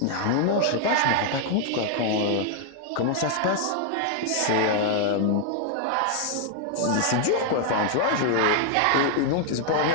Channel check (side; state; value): both; different; correlation 0.00